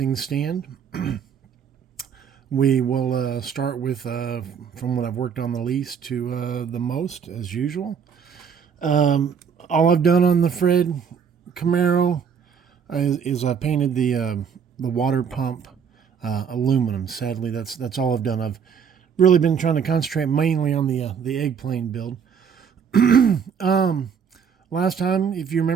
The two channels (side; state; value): left; quieter; 7.0 dB